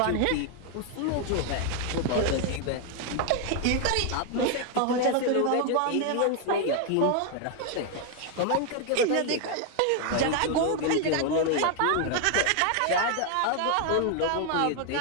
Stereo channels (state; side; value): different; both; correlation 0.00